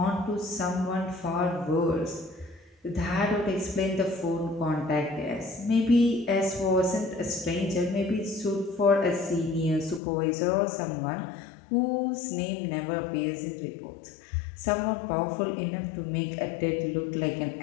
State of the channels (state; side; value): drops out; right; at 10.0 s